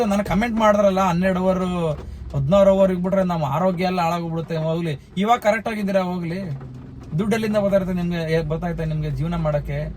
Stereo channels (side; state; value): both; identical; correlation 1.00